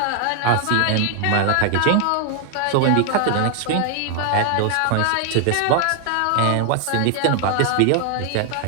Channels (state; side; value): different; both; correlation 0.00